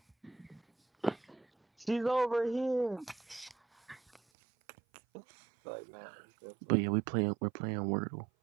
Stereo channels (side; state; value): left; drops out; at 4.2 s